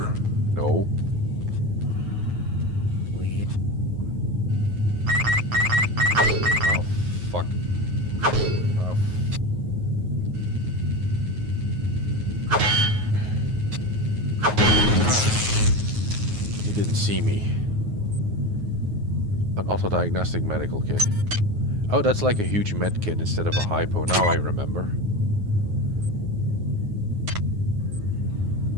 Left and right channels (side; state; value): left; late; 9.4 ms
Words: No. Oh, fuck. Oh. He didn't see me. An autodiagnostic medical kit. Oh, that's like a huge med kit instead of a hypo. Now I remember.